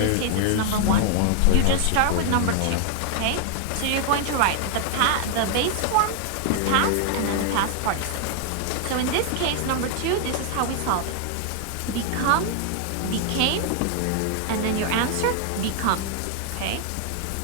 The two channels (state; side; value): different; both; correlation 0.00